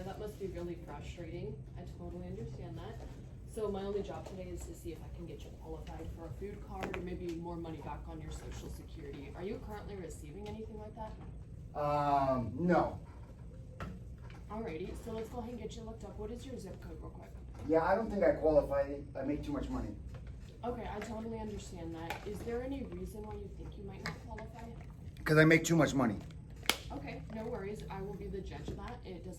That must be really frustrating. I totally understand that. So my only job today is to see if I can get you qualified for a food card or maybe more money back on your Social Security. Are you currently receiving anything like that? No. Alrighty, so let's go ahead and get you looked up. What is your zip code real quick? Yeah, I don't think I qualify. I make too much money. Okay, I totally understand that. Is there any reason why you think you might not qualify? Because I make too much money. Okay, no worries. I will be the judge of that. It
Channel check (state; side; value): identical; both; correlation 1.00